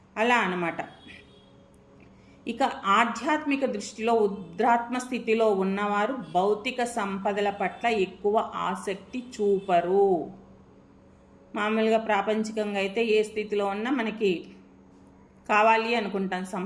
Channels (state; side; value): identical; both; correlation 1.00